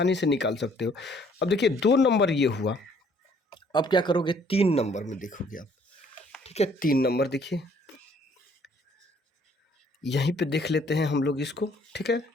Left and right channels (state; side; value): normal; both; correlation 0.62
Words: से निकाल सकते हो। अब देखिए 2 नंबर ये हुआ, अब क्या करोगे 3 नंबर में देखोगे आप, ठीक है। 3 नंबर देखिए, यहीं पे देख लेते हैं हम लोग इसको, ठीक है।